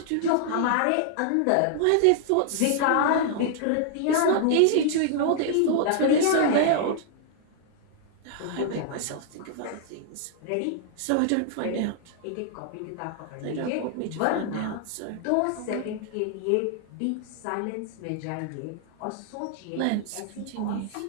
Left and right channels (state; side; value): different; both; correlation -0.01